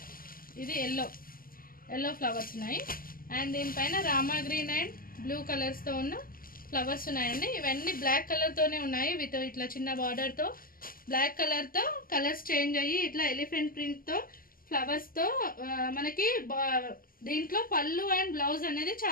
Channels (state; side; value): late; right; 0.42 ms